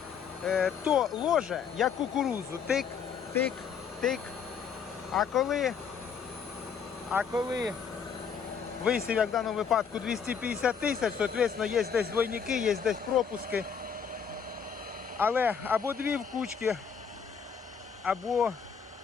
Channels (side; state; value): right; quieter; 6.8 dB